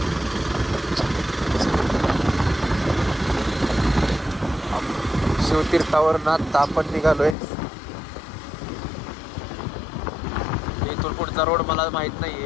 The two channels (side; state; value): right; drops out; at 7.4 s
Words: शिवतीर्थावरनं आत्ता आपण निघालोय. इथून पुढचा रोड मला माहीत नाही